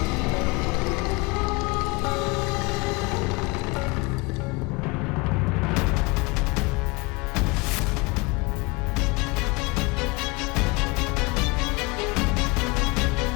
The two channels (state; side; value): quieter; right; 26.4 dB